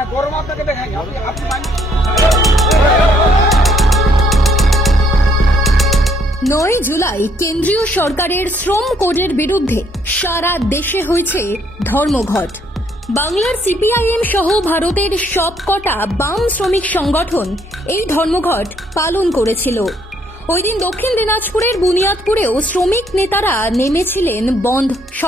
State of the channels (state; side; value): normal; both; correlation 0.68